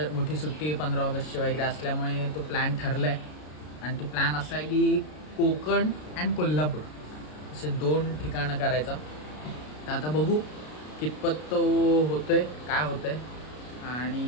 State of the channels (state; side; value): late; right; 33 ms